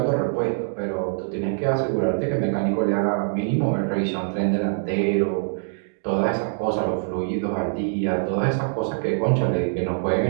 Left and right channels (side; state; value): left; silent; digital silence